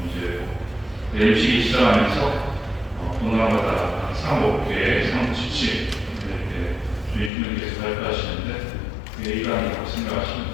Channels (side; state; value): right; drops out; at 7.3 s